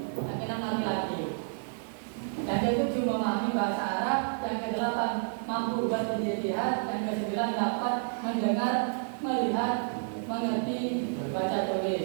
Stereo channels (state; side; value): silent; left; 58 dB below the other